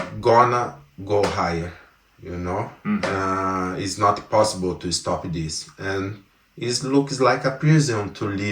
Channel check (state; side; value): identical; both; correlation 1.00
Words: gonna go higher, you know. It's not possible to stop this, and it looks like a prison to